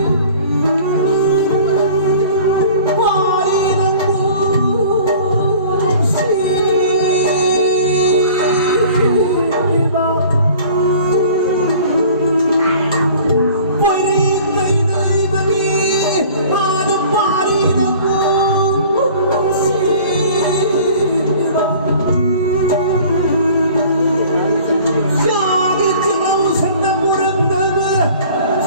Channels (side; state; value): both; inverted; correlation -0.47